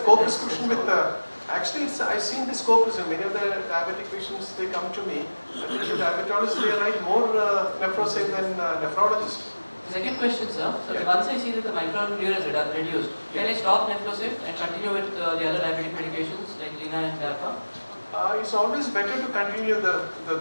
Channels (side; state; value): both; inverted; correlation -1.00